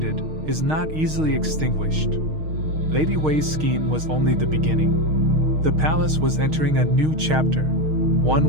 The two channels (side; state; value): left; late; 6.4 ms